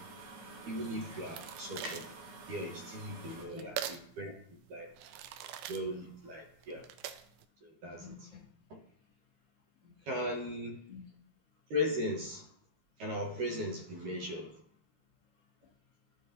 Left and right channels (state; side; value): late; left; 13 ms